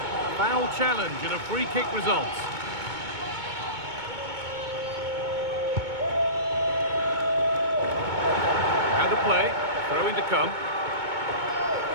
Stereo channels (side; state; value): left; late; 2.2 ms